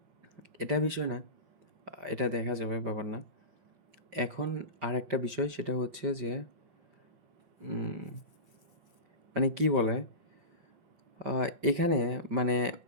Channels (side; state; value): left; late; 5.1 ms